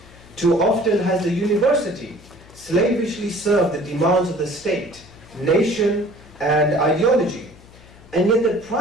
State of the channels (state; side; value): noise; left; hum, 23 dB below the sound